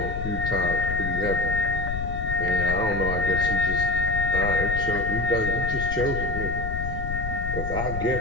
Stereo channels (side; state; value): left; noise; rumble, 5 dB below the sound